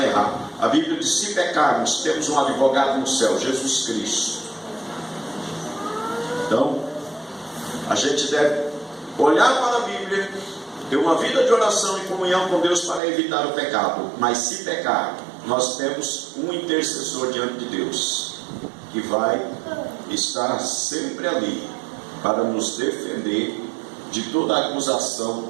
errar. A Bíblia diz, se pecarmos, temos um advogado no céu, Jesus Cristo. Então, a gente deve olhar para a Bíblia, ter uma vida de oração e comunhão com Deus para evitar o pecado. Mas se pecar, nós temos um intercessor diante de Deus, que vai estar sempre ali para nos defender de toda a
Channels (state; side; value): drops out; left; at 13.0 s